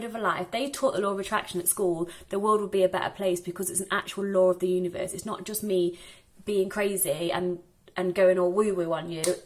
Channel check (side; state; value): both; identical; correlation 1.00